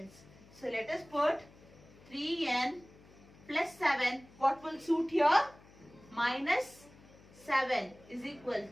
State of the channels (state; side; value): noise; left; hum, 24 dB below the sound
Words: So let us put 3n plus 7. What will suit here? Minus 7 is equal